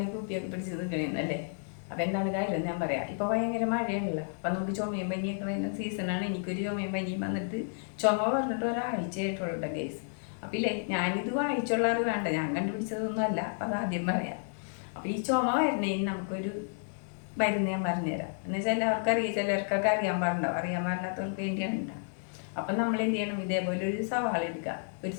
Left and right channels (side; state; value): right; silent; digital silence